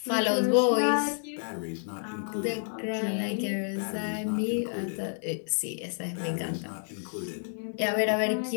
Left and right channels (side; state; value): right; silent; 58 dB below the other